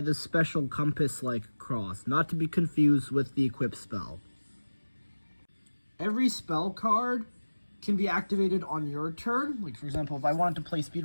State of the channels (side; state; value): both; inverted; correlation -1.00